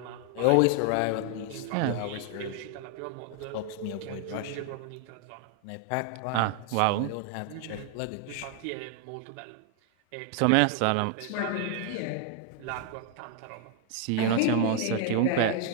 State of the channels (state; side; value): different; both; correlation 0.00